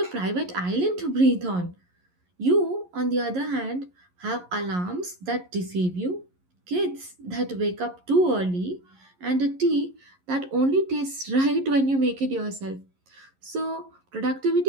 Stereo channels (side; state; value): left; late; 11 ms